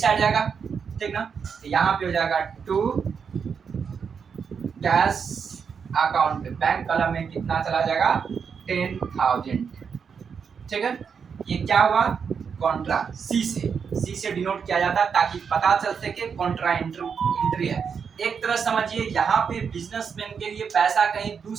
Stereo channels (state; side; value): quieter; left; 6.4 dB